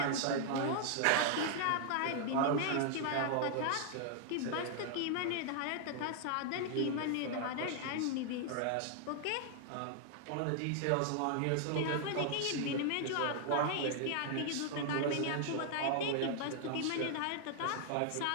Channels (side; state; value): both; different; correlation 0.00